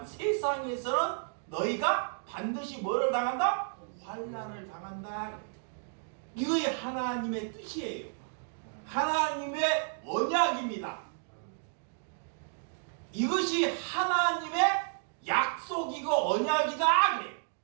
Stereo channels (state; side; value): silent; left; digital silence